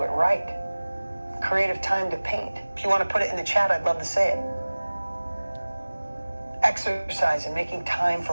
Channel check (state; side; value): inverted; both; correlation -1.00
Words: it right. Creative time to paint. If you want to put it in the chat, I'd love to say it. Exercise and making time